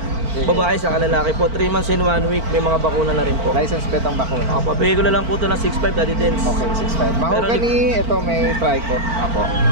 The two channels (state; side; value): late; left; 4.4 ms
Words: Babae sa lalaki po. 3 months and 1 week. May mga bakuna na rin po. License bet ang bakuna. Papabigay ko na lang po ito ng 6.5, Daddy Dens. Okay, 6.5. Mahogany, ito may trico. Apo.